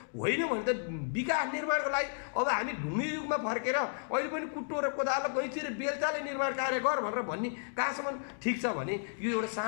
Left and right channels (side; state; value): right; silent; digital silence